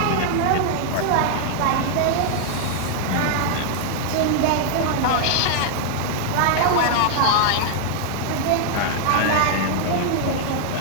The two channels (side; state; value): both; different; correlation 0.00